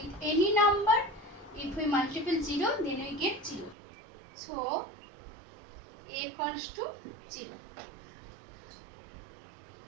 any number, if we multiply 0, then we get 0. So a equals to 0.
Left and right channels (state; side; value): drops out; left; at 3.8 s